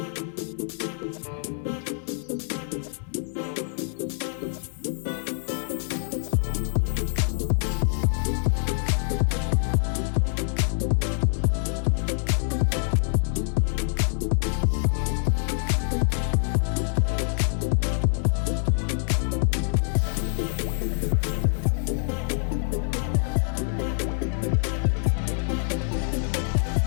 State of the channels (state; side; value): silent; right; 61 dB below the other